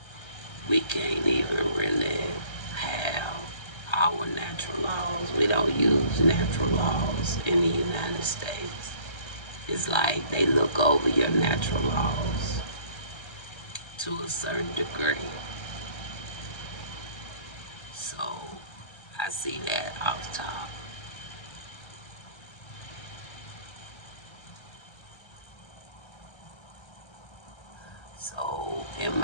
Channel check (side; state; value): right; late; 1.3 ms